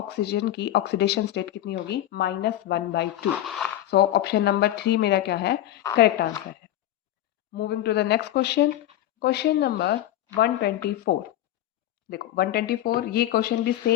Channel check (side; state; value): right; quieter; 13.2 dB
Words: की ऑक्सीडेशन स्टेट कितनी होगी? -1/2। सो ऑप्शन नंबर 3 मेरा क्या है? करेक्ट आंसर है। Moving to the next question, question number 124। देखो 124 ये क्वेश्चन भी